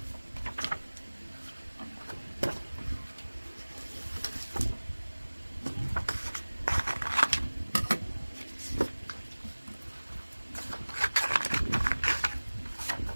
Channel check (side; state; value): both; inverted; correlation -1.00